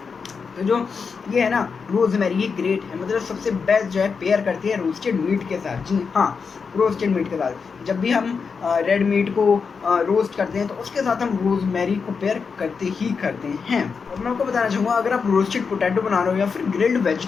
तो जो ये है ना रोज़मेरी, ये ग्रेट है, मतलब सबसे बेस्ट जो है पेयर करती है रोस्टेड मीट के साथ। जी हाँ, रोस्टेड मीट के साथ जब भी हम रेड मीट को रोस्ट करते हैं तो उसके साथ हम रोज़मेरी को पेयर करते ही करते हैं। और मैं आपको बताना चाहूँगा अगर आप रोस्टेड पोटैटो बना रहे हो या फिर ग्रिल्ड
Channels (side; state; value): right; quieter; 5.5 dB